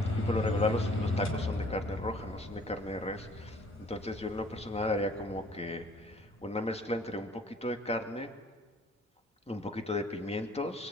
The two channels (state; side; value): normal; both; correlation 0.56